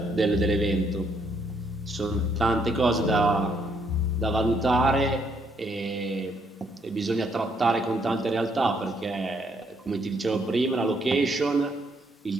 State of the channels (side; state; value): both; normal; correlation 0.71